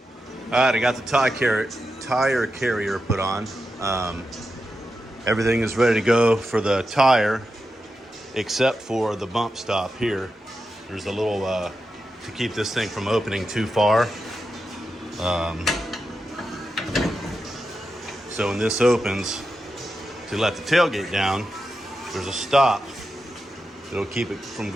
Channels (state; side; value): normal; both; correlation 0.89